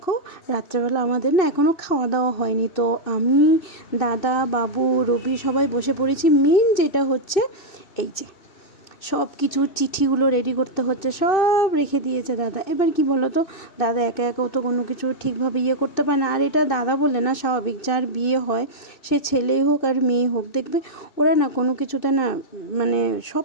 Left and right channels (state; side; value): late; right; 2.6 ms